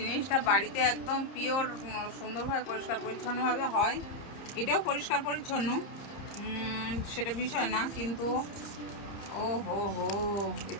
বাড়িতে একদম পিওর, সুন্দরভাবে পরিষ্কার পরিচ্ছন্নভাবে হয়। এটাও পরিষ্কার পরিচ্ছন্ন, সেটা বিষয় না, কিন্তু ও হো হো,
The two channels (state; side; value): late; right; 30 ms